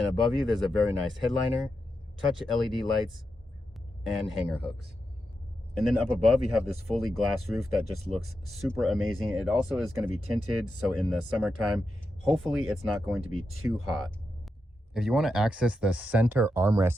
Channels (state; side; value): normal; both; correlation 0.87